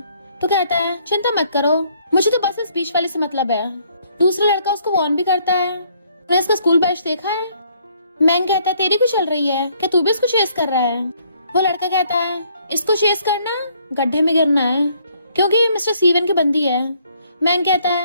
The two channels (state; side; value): inverted; both; correlation -0.66